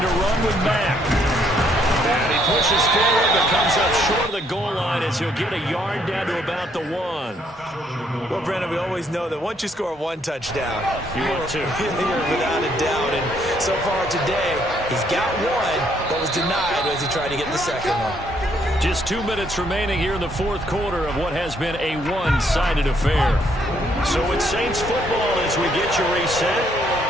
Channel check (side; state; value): both; normal; correlation 0.69